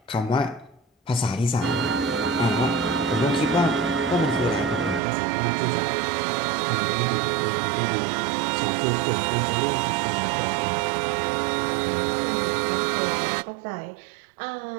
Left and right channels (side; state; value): left; drops out; at 5.0 s